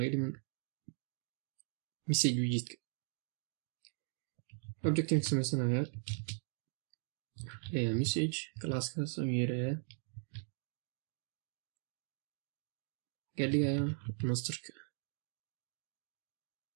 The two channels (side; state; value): left; silent; 51 dB below the other